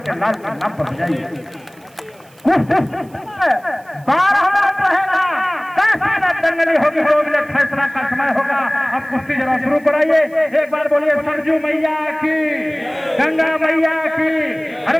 लाल के नाम पर बजाइए। 12 मिनट रहेगा, 10 मिनट दंगली होगी, 2 मिनट फैसला का समय होगा। अब कुश्ती जरा शुरू कराइए। एक बार बोलिए सरजू मैया की, गंगा मैया की,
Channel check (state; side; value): noise; right; hiss, 29 dB below the sound